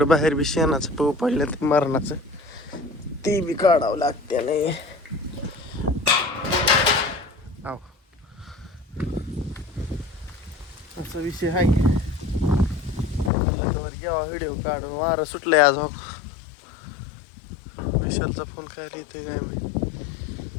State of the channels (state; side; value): drops out; right; at 13.3 s